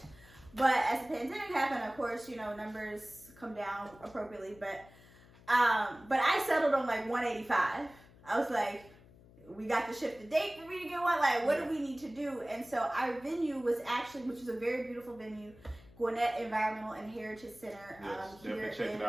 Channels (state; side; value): noise; left; hum, 23 dB below the sound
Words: But as the pandemic happened, of course, you know, numbers come down appropriately. But I settled on like 185. I was like, we got to shift the date for me to get one. Like, what do we need to do? And so our venue was actually, which is a very beautiful venue, Gwinnett Environmental and Heritage Center. Definitely check it